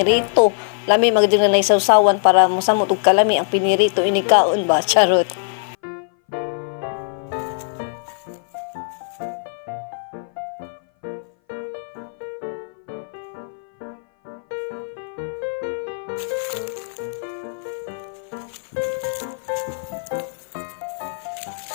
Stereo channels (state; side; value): silent; right; 58 dB below the other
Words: Lami magdi na naisawsawan para mosamot og kalami ang pinirito inikaon ba charot.